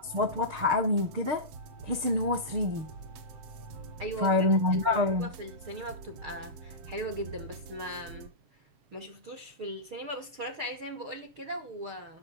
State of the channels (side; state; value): left; late; 7.2 ms